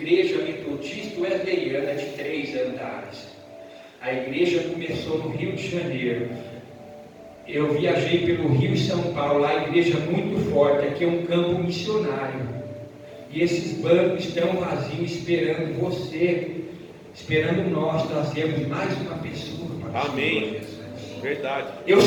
metodistas wesleyanas de 3 andares. A igreja começou no Rio de Janeiro. Eu viajei pelo Rio e São Paulo, lá a igreja muito forte, aqui é um campo missionário. E esses bancos estão vazios, esperando você, esperando nós trazermos mais uma pessoa para o Amém. Verdade. Eu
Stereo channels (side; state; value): both; identical; correlation 1.00